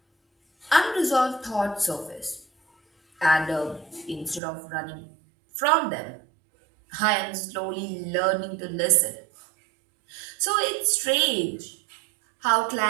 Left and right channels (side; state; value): left; drops out; at 4.4 s